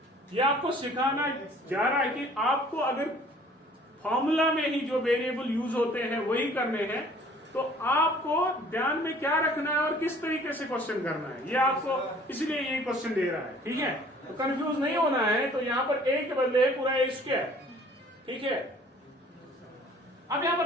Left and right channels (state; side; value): normal; both; correlation 0.53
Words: ये आपको सिखाना जा रहा है कि आपको अगर फॉर्मूला में ही जो वेरिएबल यूज होते हैं वही करने हैं, तो आपको ध्यान में क्या रखना है और किस तरीके से क्वेश्चन करना है, ये आपको इसलिए ये क्वेश्चन दे रहा है। ठीक है, तो कंफ्यूज नहीं होना है। तो यहां पर ए के बदले है पूरा ए स्क्वायर, ठीक है? अब यहां